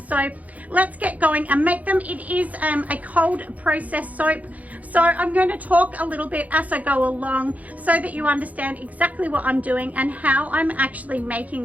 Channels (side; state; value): left; late; 0.074 ms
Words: let's get going and make them. It is a cold process soap, so I'm going to talk a little bit as I go along so that you understand exactly what I'm doing and how I'm actually